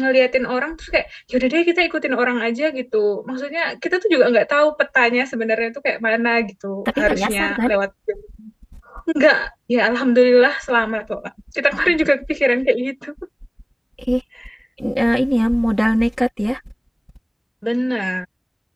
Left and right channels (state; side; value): identical; both; correlation 1.00